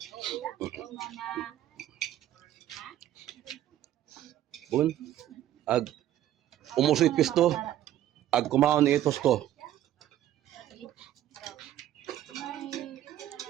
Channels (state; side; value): quieter; left; 12.6 dB